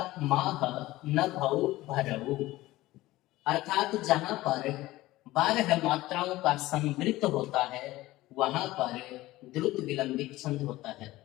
माह न भौ भरऊ, अर्थात जहां पर 12 मात्राओं का संवृत्त होता है वहां पर द्रुत विलंबित छंद होता है,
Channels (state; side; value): quieter; right; 17.6 dB